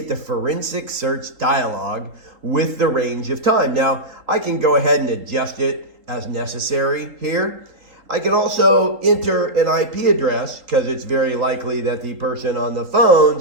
the forensic search dialog with the range of time. Now, I can go ahead and adjust it as necessary here. I can also enter an IP address because it's very likely that the person on the phone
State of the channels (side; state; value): left; late; 3.8 ms